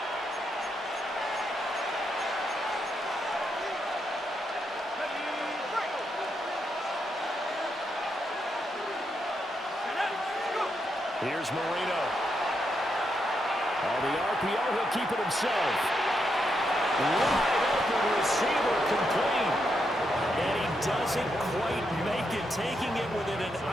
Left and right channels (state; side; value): normal; both; correlation 0.81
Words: Here's Marino. On the RPO, he'll keep it himself. Wide open receiver complete. And he doesn't quite make it, taking it within an